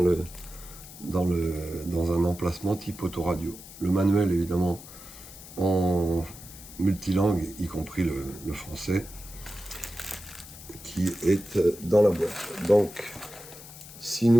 un emplacement type autoradio. Le manuel, évidemment, en multilangue, y compris le français, qui est dans la boîte. Donc, si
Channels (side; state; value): left; noise; hiss, 16 dB below the sound